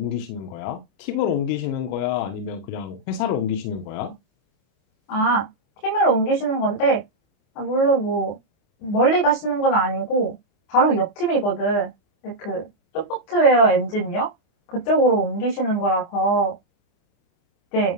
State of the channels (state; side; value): late; right; 27 ms